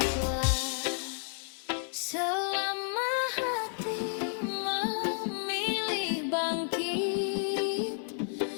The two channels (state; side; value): silent; right; digital silence